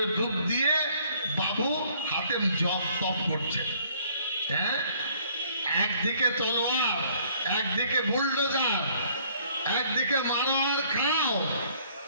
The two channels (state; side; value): inverted; both; correlation -0.61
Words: ডুব দিয়ে বাবু হাতে জপ তপ করছে। হ্যাঁ, একদিকে তলোয়ার, একদিকে বুলডোজার, একদিকে মারো আর খাও,